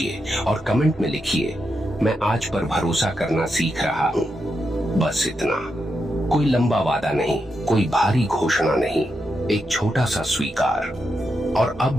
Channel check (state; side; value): normal; both; correlation 0.85